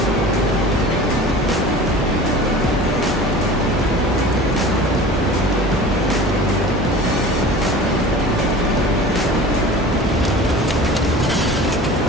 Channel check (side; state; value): both; normal; correlation 0.39